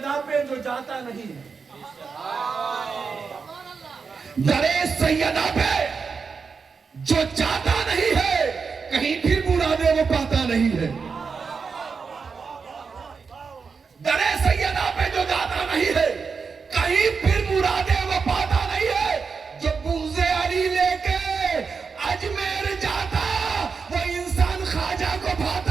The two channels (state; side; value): quieter; left; 5.3 dB